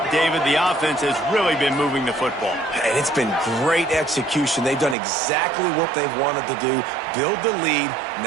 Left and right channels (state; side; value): drops out; left; at 5.0 s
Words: David. The offense has really been moving the football. And it's been great execution. They've done exactly what they've wanted to do. Build the lead.